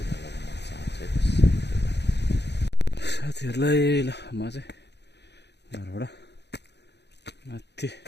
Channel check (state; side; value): late; right; 0.50 ms